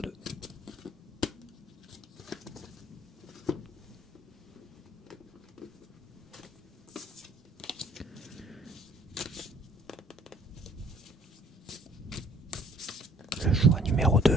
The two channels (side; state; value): both; normal; correlation 0.58